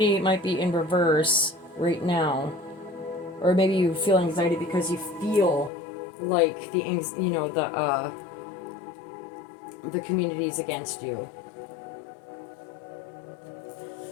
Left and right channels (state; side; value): drops out; right; at 5.7 s